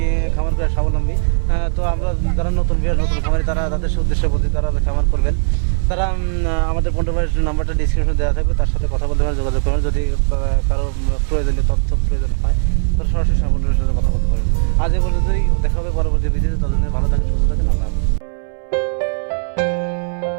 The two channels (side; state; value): left; silent; 65 dB below the other